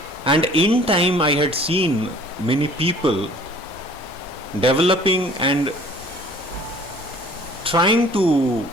And in time I had seen many people developing and trying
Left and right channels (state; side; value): normal; both; correlation 0.51